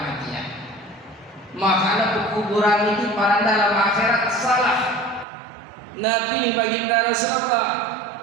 Makanya kuburan itu para dalam akhirat salah. Nabi baginda Rasulullah,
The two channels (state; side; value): drops out; left; at 5.2 s